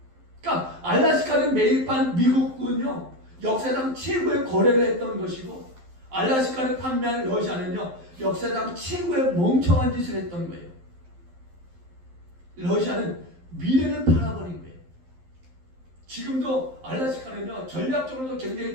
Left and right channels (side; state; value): left; late; 11 ms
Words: 그러니까 알라스카는 매입한 미국은요. 역사상 최고의 거래를 했던 것이고 알라스카를 판매한 러시아는요. 역사상 최고의 멍청한 짓을 했던 거예요. 러시아는 미래를 팔아버린 거예요. 지금도 알라스카는요. 전략적으로도